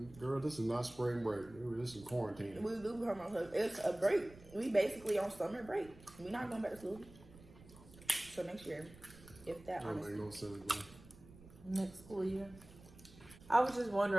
girl, this is not spring break. This is quarantine. We do come on. It's a break. We basically on summer break. We're not going back to school. So next year, if that That honestly. make no sense, bro. Next school year. I was just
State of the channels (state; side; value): noise; right; rumble, 20 dB below the sound